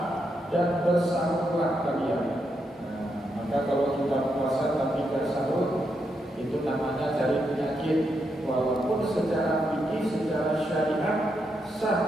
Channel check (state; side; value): normal; both; correlation 0.82